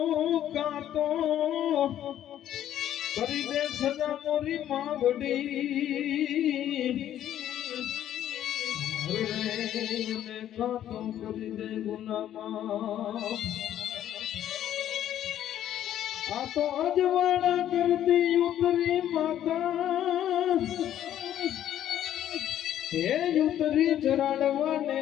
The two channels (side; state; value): right; quieter; 11.3 dB